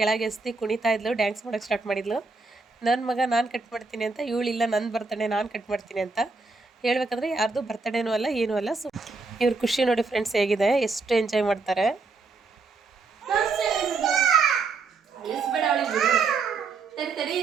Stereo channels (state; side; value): quieter; left; 4.0 dB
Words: ಎಸ್ತಿ ಕುಣಿತಾ ಇದ್ಲು, ಡ್ಯಾನ್ಸ್ ಮಾಡೋಕ್ಕೆ ಸ್ಟಾರ್ಟ್ ಮಾಡಿದ್ಲು. ನನ್ನ ಮಗ ನಾನು ಕಟ್ ಮಾಡ್ತೀನಿ ಅಂತ, ಇವಳಿಲ್ಲ ನನ್ನ ಬರ್ತಡೇ ನಾನು ಕಟ್ ಮಾಡ್ತೀನಿ ಅಂತ. ಹೇಳ್ಬೇಕಂದ್ರೆ ಯಾರ್ದು ಬರ್ತಡೇನೂ ಅಲ್ಲ ಏನೂ ಅಲ್ಲ. ಸೊ ಇವ್ರ ಖುಷಿ ನೋಡಿ ಫ್ರೆಂಡ್ಸ್ ಹೇಗಿದೆ, ಎಷ್ಟು ಎಂಜಾಯ್ ಮಾಡ್ತಾರೆ.